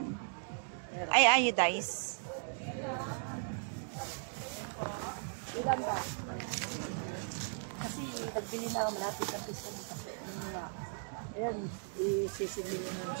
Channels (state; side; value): silent; left; digital silence